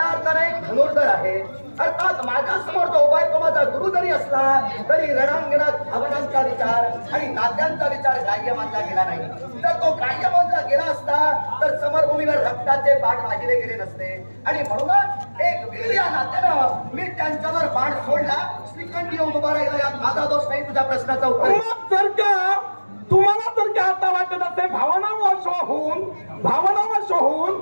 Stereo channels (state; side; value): inverted; both; correlation -1.00